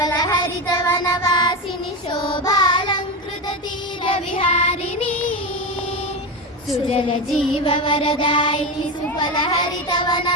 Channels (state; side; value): normal; both; correlation 0.18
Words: హరిత వనవాసిని శోభాలంకృత తీర విహారిణి సుజల జీవ వరదాయిని సుఫల హరిత